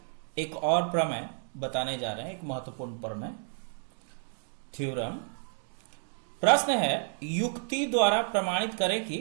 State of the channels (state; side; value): silent; left; digital silence